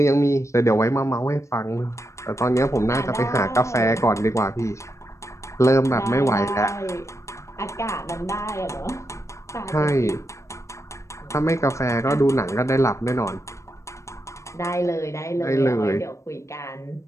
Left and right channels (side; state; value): right; late; 0.14 ms